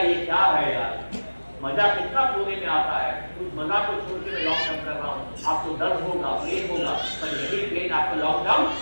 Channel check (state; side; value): inverted; both; correlation -1.00